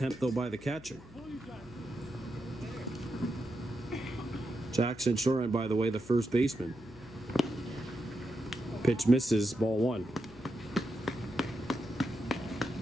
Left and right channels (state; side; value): noise; left; hum, 19 dB below the sound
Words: though, by the catcher. Jackson Shoren, by the way, the first baseman. Pitch misses, ball 1.